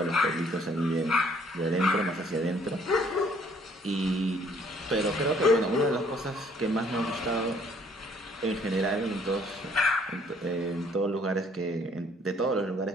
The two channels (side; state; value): both; normal; correlation 0.62